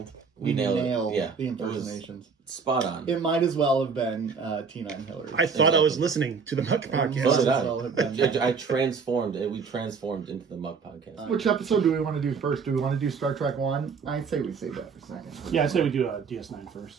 nailed it. Yeah. the impersonations. Spot on. It might as well have been Tina and Hillary. I thought I was listening to the Muck So podcast. did Might as well have been. I transformed. We transformed into the Muck podcast. Which episode do we want to do first? Do we want to do Star Trek 1? I'd say we save that for second. Yeah, I say we do DS9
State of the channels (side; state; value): left; quieter; 5.5 dB